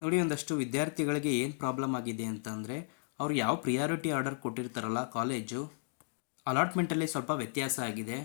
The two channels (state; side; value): silent; right; digital silence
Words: ನೋಡಿ, ಒಂದಷ್ಟು ವಿದ್ಯಾರ್ಥಿಗಳಿಗೆ ಏನು ಪ್ರಾಬ್ಲಮ್ ಆಗಿದೆ ಅಂತಂದರೆ, ಅವ್ರು ಯಾವ ಪ್ರಿಯಾರಿಟಿ ಆರ್ಡರ್ ಕೊಟ್ಟಿರ್ತಾರಲ್ಲ ಕಾಲೇಜು, ಅಲಾಟ್ಮೆಂಟಲ್ಲಿ ಸ್ವಲ್ಪ ವ್ಯತ್ಯಾಸ ಆಗಿದೆ.